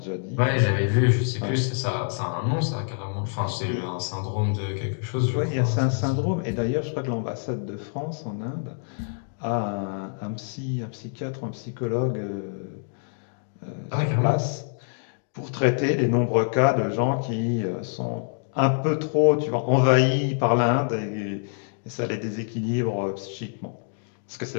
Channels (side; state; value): right; silent; digital silence